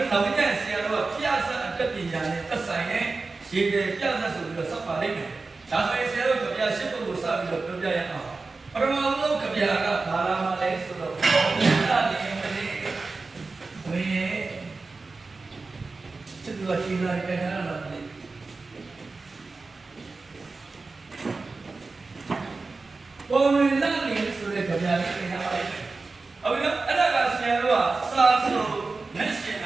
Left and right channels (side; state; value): left; quieter; 3.8 dB